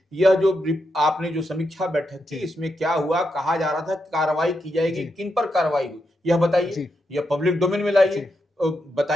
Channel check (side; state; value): both; normal; correlation 0.84